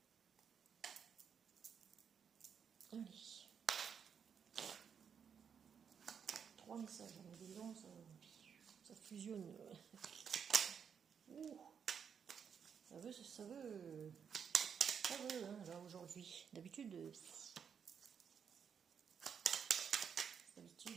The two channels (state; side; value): quieter; left; 7.2 dB